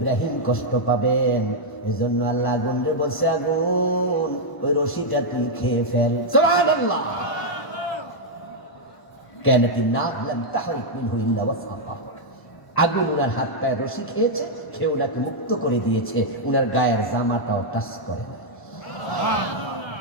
কষ্ট পাবেন। এজন্য আল্লাহ আগুনরে বলছে আগুন ওই রশিটা তুই খেয়ে ফেল। সুবহানাল্লাহ। কানাতিন নার লাম তাহরিক মিনহু ইল্লা ওয়াসাকাহু। আগুন উনার হাত পায়ে রশি খেয়েছে, খেয়ে ওনাকে মুক্ত করে দিয়েছে, উনার গায়ের জামাটাও টাচ করে না।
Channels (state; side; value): late; right; 1.0 ms